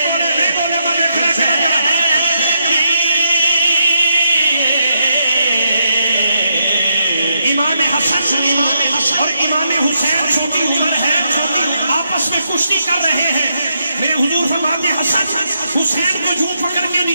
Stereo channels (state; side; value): inverted; both; correlation -0.79